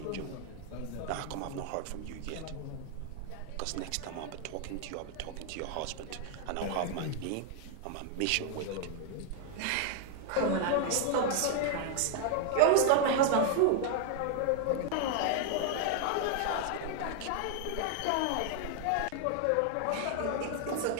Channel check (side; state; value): both; different; correlation 0.00